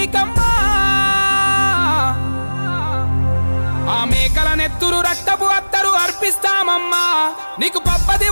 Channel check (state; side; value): inverted; both; correlation -1.00